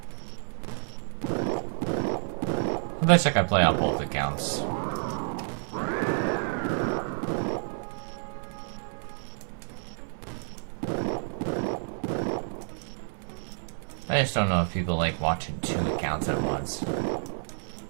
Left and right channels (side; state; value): left; silent; 58 dB below the other